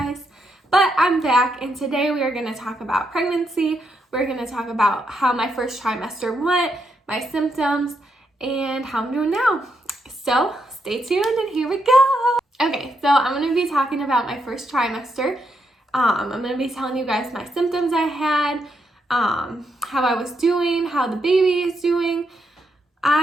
but I'm back and today we are going to talk about pregnancy. We're going to talk about how my first trimester went, my symptoms, and how I'm doing now. So stay tuned and here we go. Okay, so I'm going to be talking about my first trimester. I'm going to be telling you guys my symptoms I had, how I was doing, how the baby is doing.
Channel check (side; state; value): both; normal; correlation 0.80